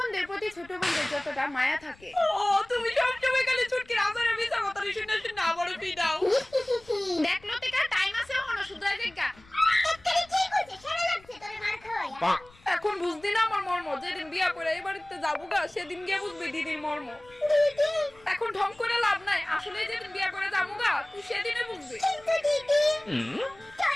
প্রতি ছোট বোনদের যতটা মায়া থাকে। ও তুমি সবসময় খালি ছুটকির আসারে মিছা কথা শুনে শুনে আবারও পিটাও। দেখ লতিকা টাইম আছে এখনো শুধরাই দেখা। এখন বুঝদি না আমার মর্ম, যেদিন বিয়া করে এই বাড়িতে যাবো গা সেদিন গিয়ে বুঝবি দিদির মর্ম। এখন ঢং করে লাভ নাই, আসলে যেদিন বিয়া করে যাবো গা তুই সেদিনে বুঝবি।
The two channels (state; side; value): noise; left; rumble, 26 dB below the sound